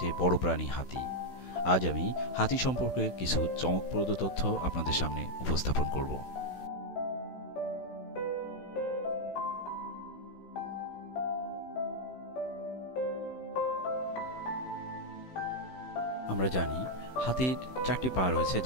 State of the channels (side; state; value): right; late; 16 ms